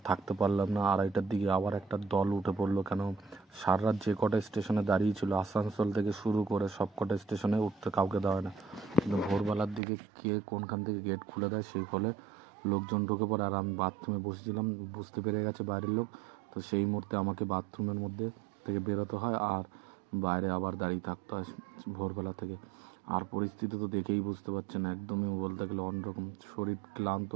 থাকতে পারলাম না। 2:30টার দিকে আবার একটা দল উঠে পড়লো। কেন সারা রাত যে কটা স্টেশনে দাঁড়িয়েছিল, আসানসোল থেকে শুরু করে সব কটা স্টেশনে উঠতে কাউকে দেওয়া না, কিন্তু ভোরবেলার দিকে কে কোনখান থেকে গেট খুলে দেয়, সেই ফলে লোকজন ঢুকে পড়ে। আর আমি বাথরুমে বসেছিলাম, বুঝতে পেরে গেছে বাইরের লোক। তো সেই মুহূর্তে আমাকে বাথরুমের মধ্যে থেকে বেরোতে হয় আর বাইরে আবার দাঁড়িয়ে থাকতে হয় ভোরবেলা থেকে। আর পরিস্থিতি তো দেখেই বুঝতে পারছেন, একদমই বলতে গেলে অন্যরকম। শরীর ক্লান্ত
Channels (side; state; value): left; drops out; at 9.8 s